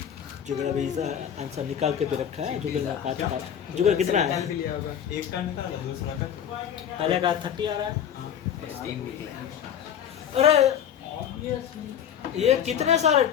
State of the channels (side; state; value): right; quieter; 9.0 dB